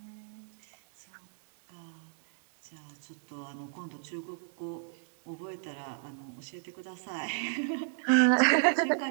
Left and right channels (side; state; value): left; silent; digital silence